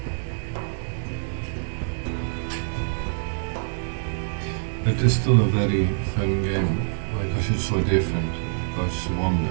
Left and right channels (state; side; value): silent; left; digital silence